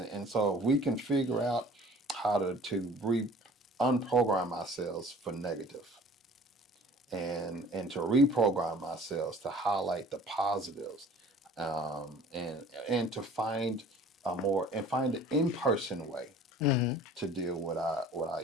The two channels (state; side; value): normal; both; correlation 0.48